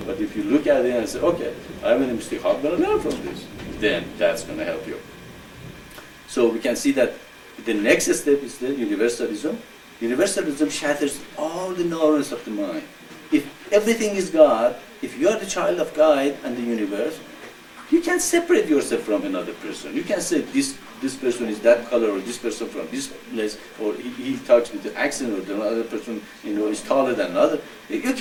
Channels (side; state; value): both; identical; correlation 1.00